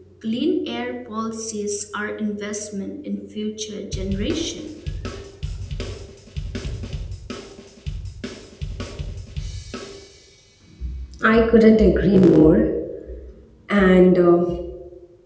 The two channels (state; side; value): identical; both; correlation 1.00